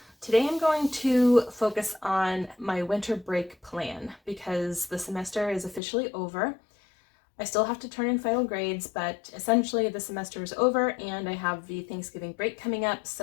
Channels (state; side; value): drops out; right; at 5.8 s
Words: Today I'm going to focus on my winter break plan because the semester is officially over. I still have to turn in final grades, but essentially the semester is over and I have the Thanksgiving break coming up.